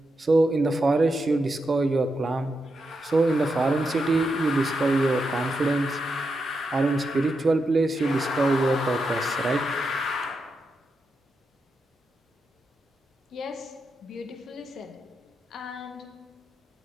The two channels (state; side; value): normal; both; correlation 0.85